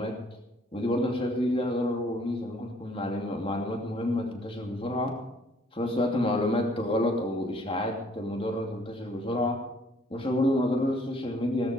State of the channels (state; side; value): normal; both; correlation 0.61